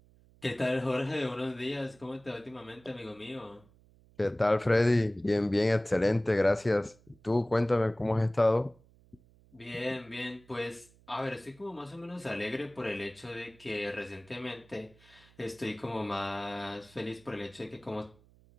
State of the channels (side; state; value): right; noise; hum, 28 dB below the sound